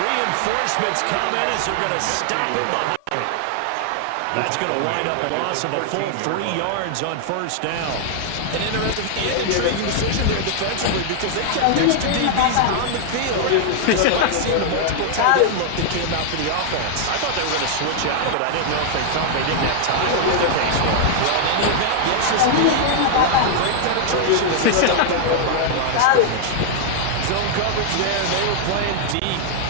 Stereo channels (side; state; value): both; different; correlation 0.00